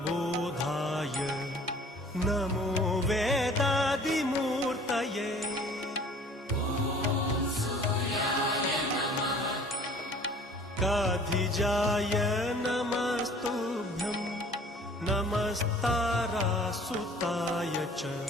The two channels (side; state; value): both; normal; correlation 0.50